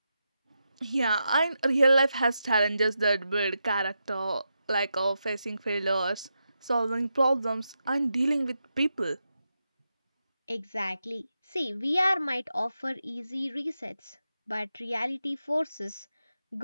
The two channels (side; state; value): both; inverted; correlation -0.87